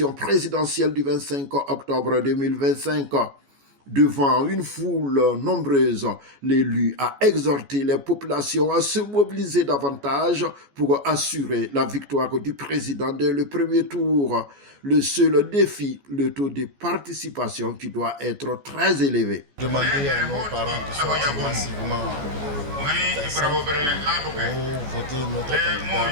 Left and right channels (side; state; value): left; late; 14 ms